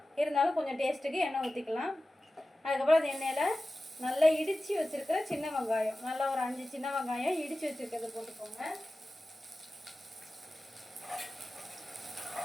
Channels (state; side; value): normal; both; correlation 0.95